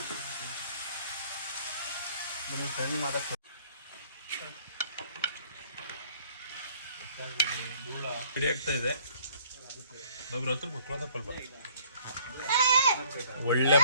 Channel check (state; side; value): inverted; both; correlation -0.59